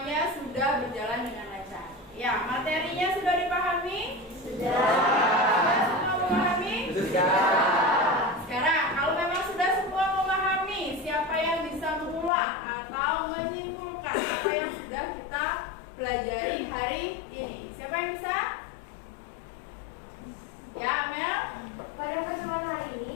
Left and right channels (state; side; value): drops out; right; at 12.3 s